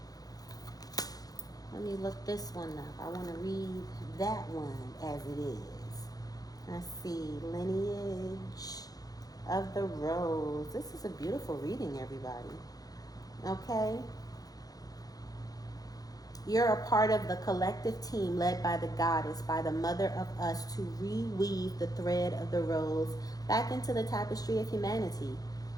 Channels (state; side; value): late; right; 0.18 ms